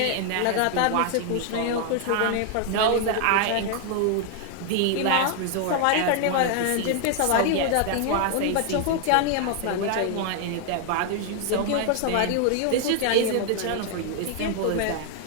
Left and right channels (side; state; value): both; different; correlation 0.00